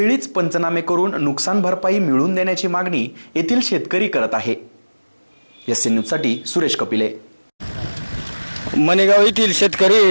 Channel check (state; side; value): inverted; both; correlation -1.00